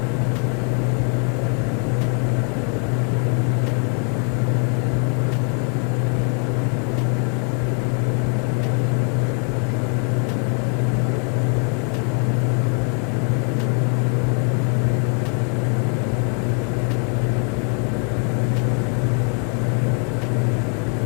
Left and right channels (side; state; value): right; quieter; 36.1 dB